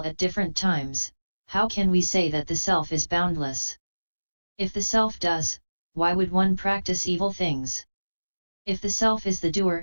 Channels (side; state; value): both; inverted; correlation -1.00